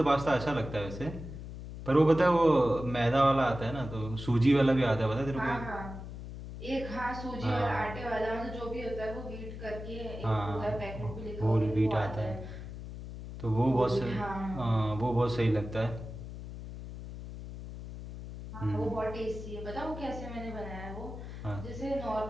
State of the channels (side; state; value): left; noise; hum, 10 dB below the sound